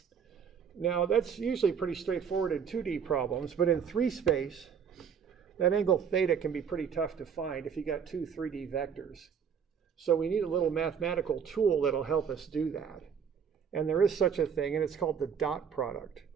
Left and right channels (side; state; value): left; quieter; 7.2 dB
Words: Now that's usually pretty straightforward in 2D problems, but in 3 space, that angle theta can be pretty tough to find if you got 2 3D vectors. So we need a little mathematical tool that'll help us do that. And there is such a thing, and it's called the dot product.